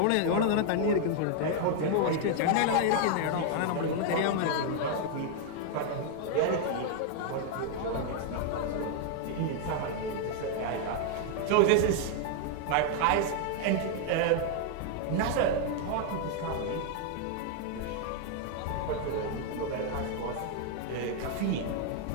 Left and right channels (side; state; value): both; different; correlation 0.00